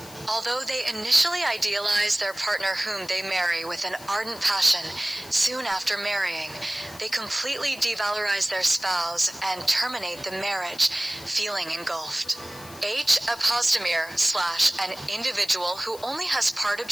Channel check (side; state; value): left; noise; hiss, 18 dB below the sound